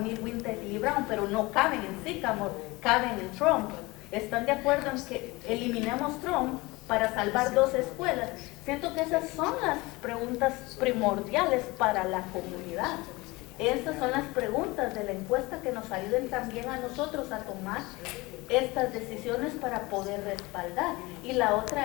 Winter Hill y Brown, pero no caben en Sycamore, caben en Trump. ¿Están de acuerdo en que eliminemos Trump para salvar 2 escuelas? Siento que esas son las preguntas primordiales para la comunidad. Estas son las preguntas de la encuesta que nos ayuden también a nosotros a tomar estas decisiones para poder respaldar. Y la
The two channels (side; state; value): right; quieter; 22.6 dB